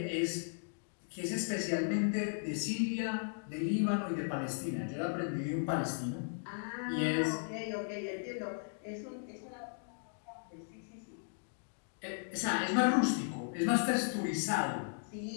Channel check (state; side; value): silent; right; digital silence